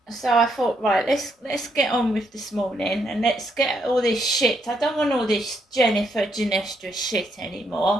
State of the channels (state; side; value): normal; both; correlation 0.76